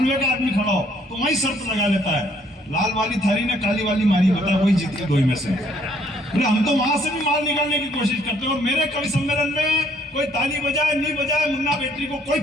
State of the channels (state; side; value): normal; both; correlation 0.65